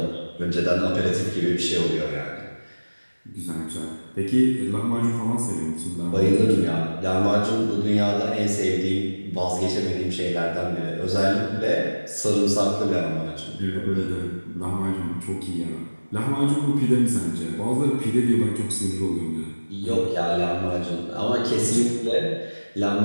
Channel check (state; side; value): inverted; both; correlation -1.00